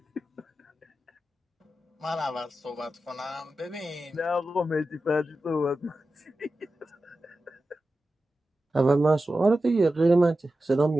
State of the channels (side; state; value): both; normal; correlation 0.93